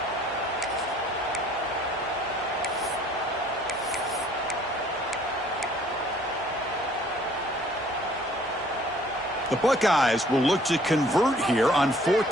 The Buckeyes will look to convert here on 4th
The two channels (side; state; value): both; normal; correlation 0.58